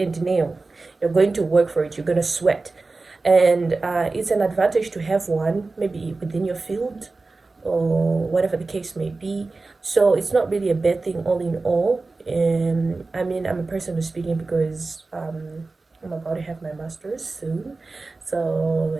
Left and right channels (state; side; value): quieter; left; 3.6 dB